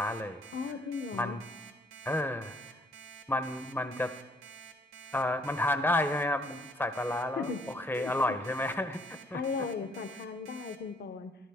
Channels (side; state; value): both; normal; correlation 0.64